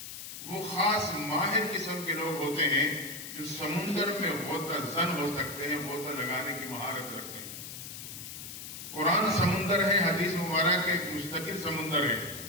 وہ خاص ماہر قسم کے لوگ ہوتے ہیں جو سمندر میں غوطہ زن ہو سکتے ہیں، غوطہ لگانے کی مہارت رکھتے ہیں. قرآن سمندر ہے، حدیث مبارک ایک مستقل سمندر ہے.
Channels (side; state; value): left; noise; hiss, 10 dB below the sound